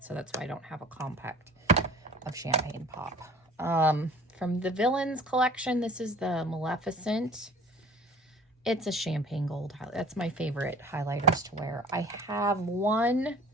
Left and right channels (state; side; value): normal; both; correlation 0.46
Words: so that's why I don't have a compact of Champagne Pop. From the Villains collection, this is the Maleficent. It's a champagne gold highlight. That's my favorite highlighters to wear. I have one